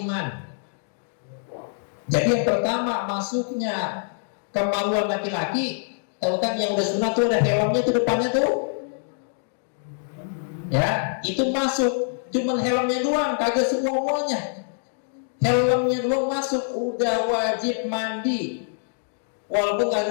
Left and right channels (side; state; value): right; silent; digital silence